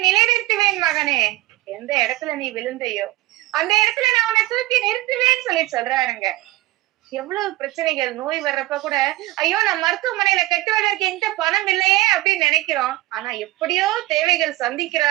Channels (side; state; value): left; quieter; 18.2 dB